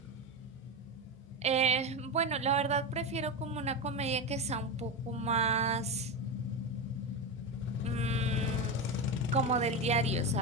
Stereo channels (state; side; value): normal; both; correlation 0.16